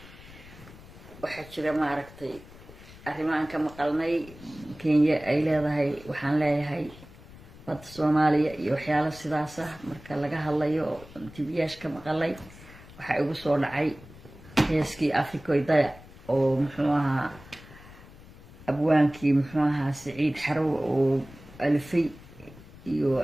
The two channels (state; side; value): noise; left; rumble, 19 dB below the sound